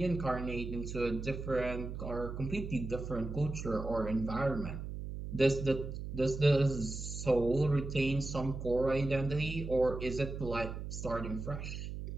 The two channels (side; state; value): right; noise; hum, 7 dB below the sound